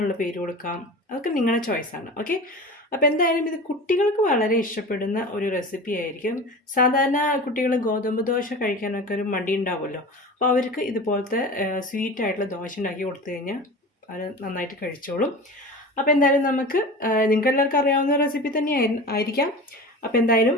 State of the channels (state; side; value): normal; both; correlation 0.34